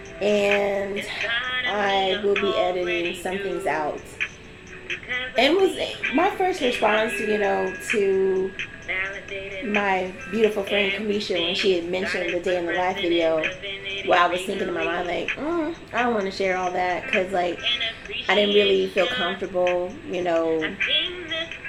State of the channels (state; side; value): identical; both; correlation 1.00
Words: and I will be editing some things out. And was my first response, to my beautiful friend Kamisha when she had mentioned the day in the life video. Well, I was thinking in my mind like, I don't want to share all that, because like I didn't really feel comfortable,